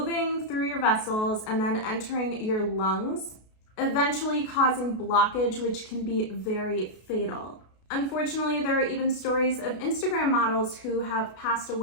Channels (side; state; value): right; late; 33 ms